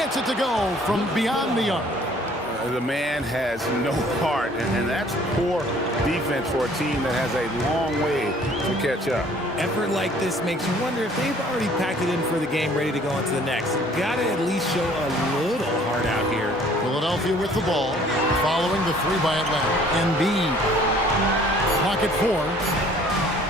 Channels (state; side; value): normal; both; correlation 0.56